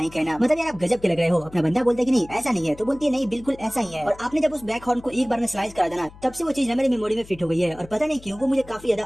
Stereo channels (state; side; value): noise; left; hum, 20 dB below the sound